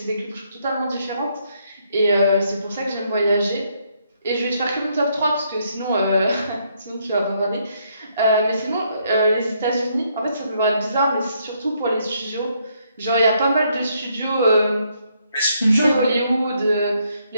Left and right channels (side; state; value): both; inverted; correlation -0.73